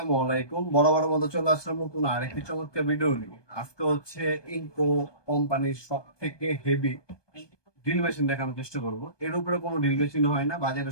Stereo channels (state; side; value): late; right; 1.2 ms